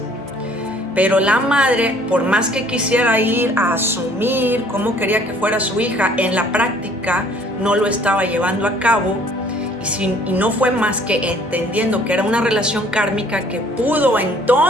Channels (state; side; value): normal; both; correlation 0.57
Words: Pero la madre, por más que quisiera ir a asumir cómo quería que fuera su hija, en la práctica no lo estaba llevando a cabo y no fue más que entendiendo que era una relación kármica que pudo